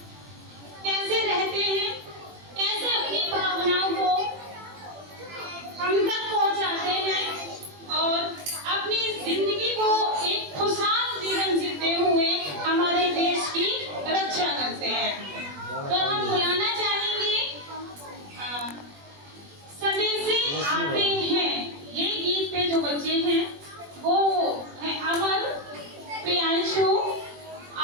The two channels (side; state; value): left; late; 21 ms